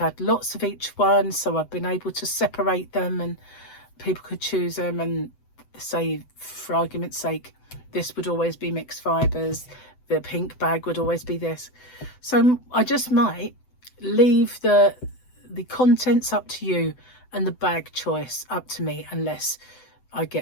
lots of each one, so I've been able to separate them and people could choose them, and say, for argument's sake, this would always be mixed fibres, the pink bag would always be this. So I just might leave the contents up to you and the bag choice up to me, unless I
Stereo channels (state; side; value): late; right; 7.9 ms